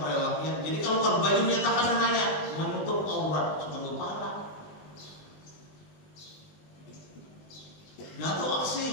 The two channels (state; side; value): late; right; 20 ms